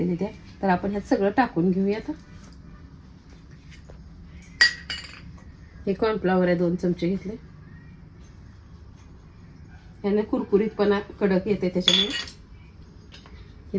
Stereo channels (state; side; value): identical; both; correlation 1.00